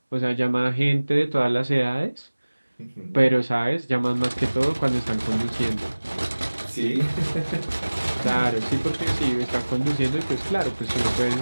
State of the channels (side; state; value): both; inverted; correlation -1.00